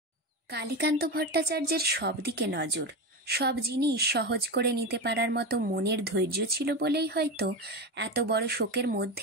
কালীকান্ত ভট্টাচার্যের সব দিকে নজর, সব জিনিস সহজ করে নিতে পারার মতো মনের ধৈর্য ছিল বলেই হয়তো এত বড় শোকের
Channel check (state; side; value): normal; both; correlation 0.19